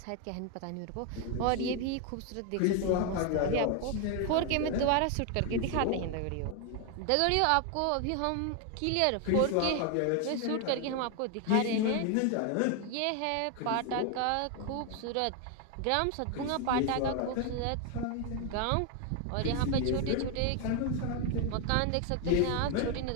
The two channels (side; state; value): both; different; correlation 0.01